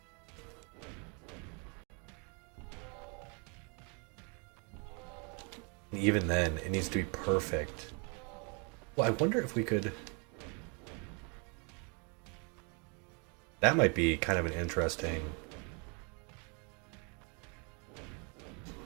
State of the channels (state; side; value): quieter; left; 34.9 dB